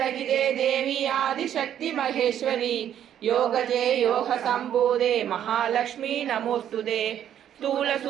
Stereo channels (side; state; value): left; quieter; 10.2 dB